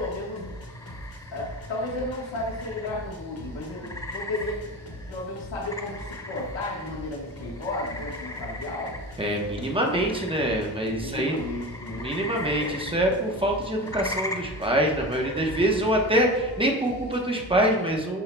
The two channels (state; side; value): normal; both; correlation 0.30